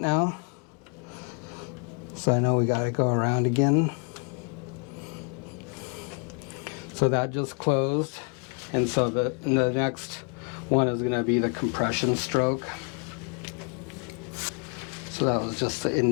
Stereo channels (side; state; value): right; quieter; 37.3 dB